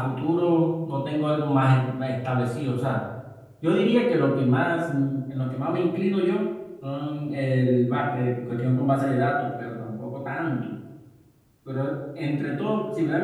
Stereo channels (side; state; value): both; identical; correlation 1.00